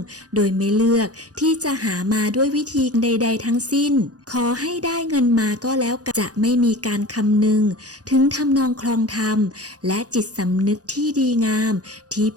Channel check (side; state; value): left; late; 0.67 ms